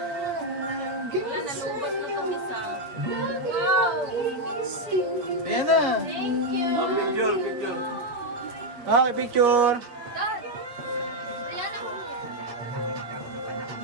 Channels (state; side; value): late; left; 7.6 ms